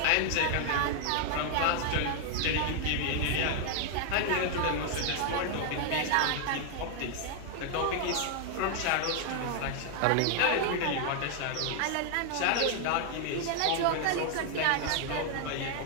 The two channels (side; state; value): both; different; correlation 0.00